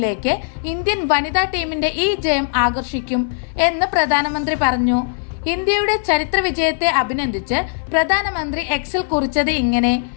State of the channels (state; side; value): silent; right; 60 dB below the other